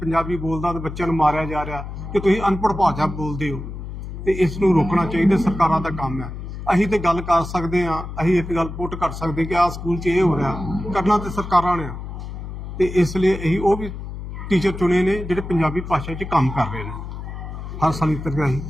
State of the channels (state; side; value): noise; left; hum, 9 dB below the sound